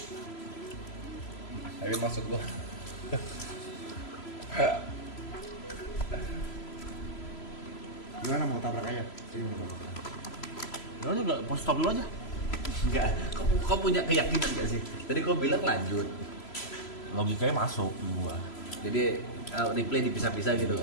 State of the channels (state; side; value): late; right; 3.0 ms